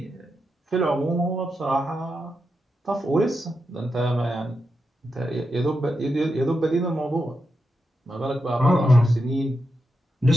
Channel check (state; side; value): normal; both; correlation 0.86